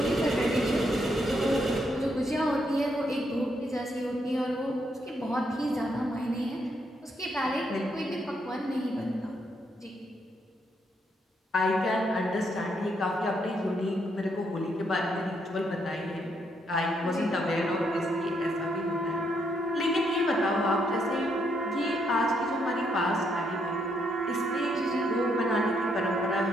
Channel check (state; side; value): normal; both; correlation 0.75